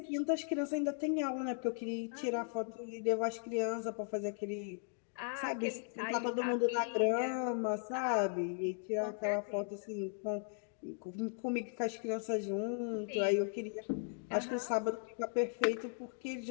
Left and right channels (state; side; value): silent; right; 53 dB below the other